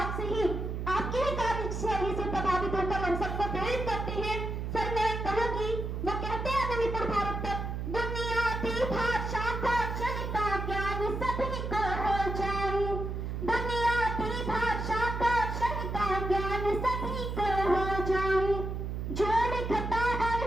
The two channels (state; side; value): noise; right; hum, 4 dB below the sound